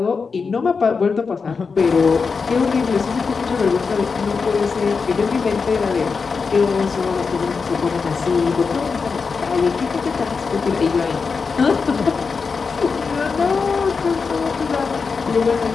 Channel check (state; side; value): quieter; right; 5.0 dB